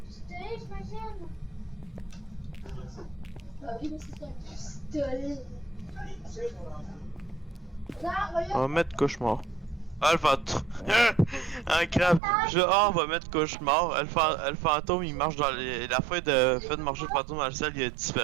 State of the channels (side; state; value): left; drops out; at 12.2 s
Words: j'imagine. Bah oui, mais c'est un pistolet. Là, On regarde. va mettre cauchemar. Ah, le fantôme. Un crabe. On va mettre cauchemar. Le fantôme, il marche dans les... La fin de marcher le fantôme dans le ciel, il a